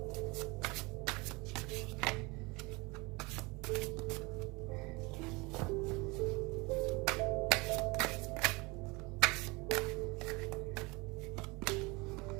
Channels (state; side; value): quieter; left; 25.8 dB